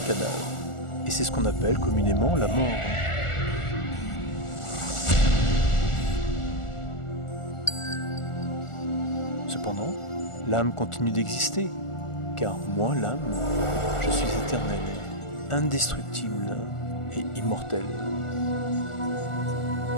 cadavre. Et c'est ce qu'on appelle communément la mort. Cependant, l'âme continue d'exister, car moi, l'âme, je suis éternel, indestructible et immortel.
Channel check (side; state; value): right; late; 1.4 ms